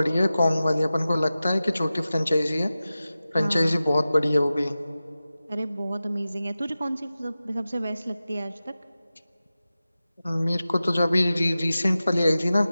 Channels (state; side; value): inverted; both; correlation -0.95